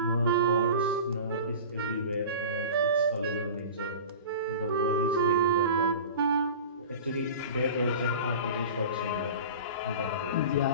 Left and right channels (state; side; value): inverted; both; correlation -0.37